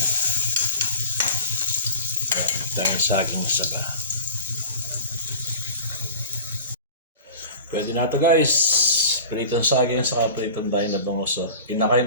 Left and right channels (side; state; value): both; inverted; correlation -0.38